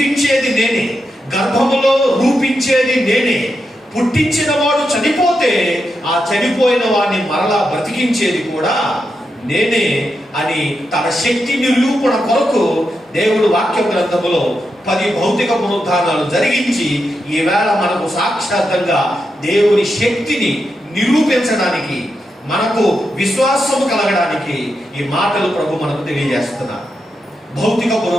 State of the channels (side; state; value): both; normal; correlation 0.86